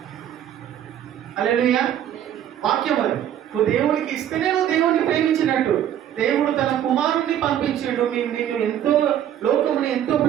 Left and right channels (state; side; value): quieter; left; 10.7 dB